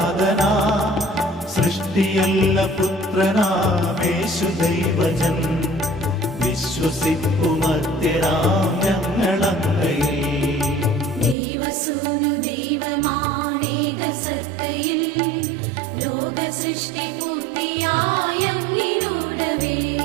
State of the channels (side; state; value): left; drops out; at 11.4 s